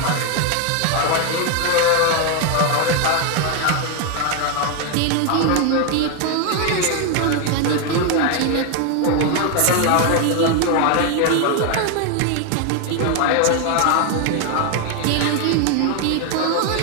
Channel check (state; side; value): different; both; correlation 0.01